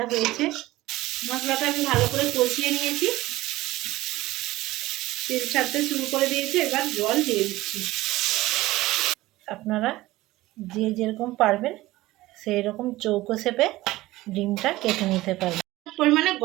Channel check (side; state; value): left; quieter; 17.7 dB